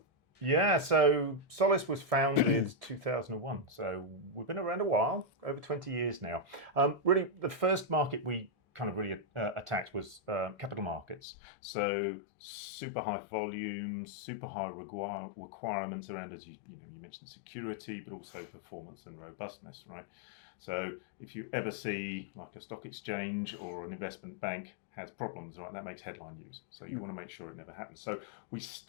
Yeah, so Solace was founded 2001. So we've been around a while, over 20 years now. Really, the first market we kind of really attacked was capital markets. So super high volumes, super high requirements around, as you mentioned, security, but also performance and robustness, right? So if you ever see like a stock exchange or an investment bank has problems, right, that makes headline news. So you want to make sure it never happens. So we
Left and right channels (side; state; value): right; drops out; at 11.2 s